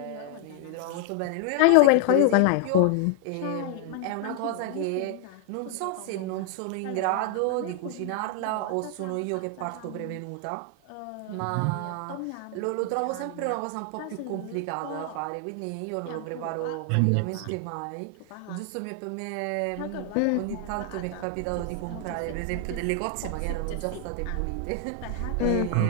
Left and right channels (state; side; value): different; both; correlation 0.00